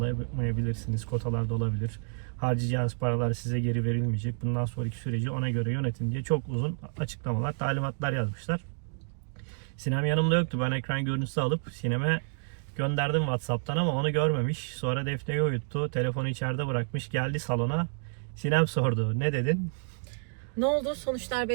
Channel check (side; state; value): left; silent; 58 dB below the other